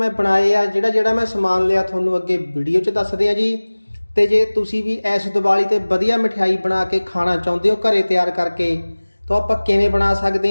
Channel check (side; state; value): both; inverted; correlation -1.00